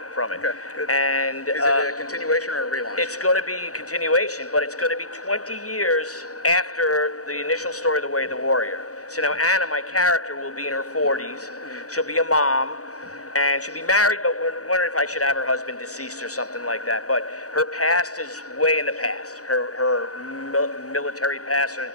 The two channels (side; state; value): right; late; 0.66 ms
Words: from it. Okay, good. And is it a continuation or a relaunch? It's going to be a continuation, but it's going to be 20 years after the initial story, The Way of the Warrior. So now Anna, my character, will be in her 40s. She'll be a mom. And she'll be married, but we're wondering if I should have her husband deceased or something like that. But her past is way in the past. Her military past,